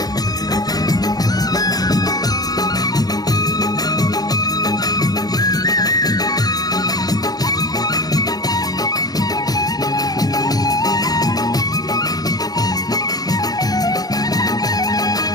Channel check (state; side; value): late; right; 0.19 ms